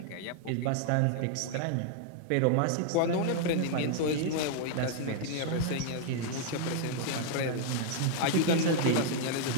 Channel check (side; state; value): both; different; correlation 0.00